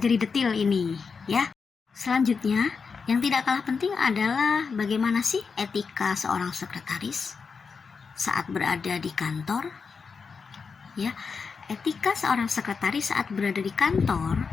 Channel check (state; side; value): quieter; right; 5.3 dB